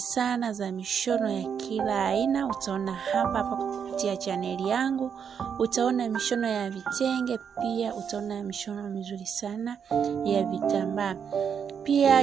za mishono ya kila aina. Utaona hapa kupitia channel yangu, utaona mishono ya vitenge, pia utaona mishono mizuri sana ya vitambaa.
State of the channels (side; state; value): left; quieter; 7.3 dB